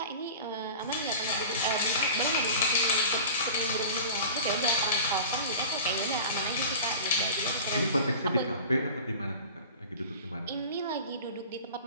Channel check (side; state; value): both; inverted; correlation -0.37